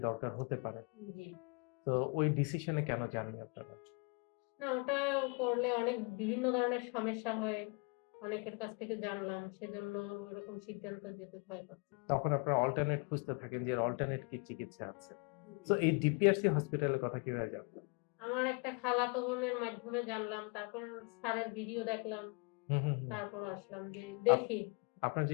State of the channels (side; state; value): right; quieter; 32.8 dB